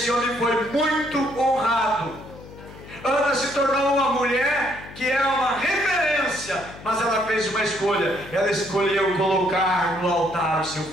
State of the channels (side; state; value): left; noise; hum, 17 dB below the sound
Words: homem foi muito honrado. Ana se tornou uma mulher que é uma referência, mas ela fez uma escolha. Ela escolheu colocar no altar o seu